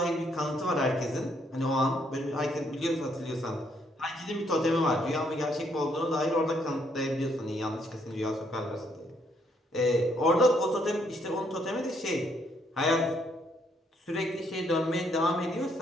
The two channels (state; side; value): normal; both; correlation 0.71